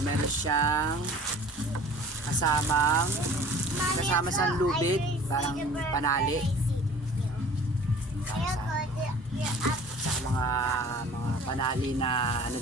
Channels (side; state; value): both; normal; correlation 0.47